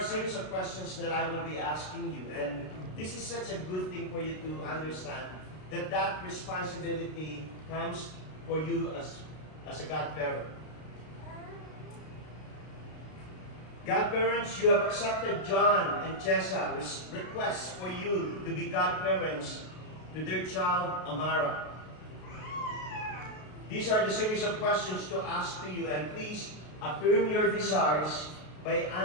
series of questions that I will be asking you, and this is such a good thing for you to understand that that responsibility comes for you as a godparent. Godparents, you have accepted John and Chessa's request for you to be godparents to their child, Amara. These are the series of questions to ask to you, and please affirm your desires by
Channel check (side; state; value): right; late; 33 ms